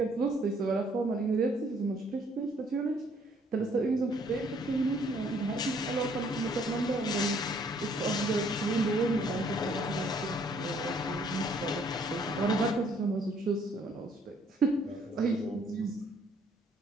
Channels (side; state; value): both; normal; correlation 0.64